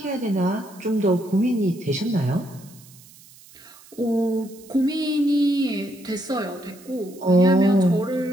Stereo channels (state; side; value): noise; right; hiss, 23 dB below the sound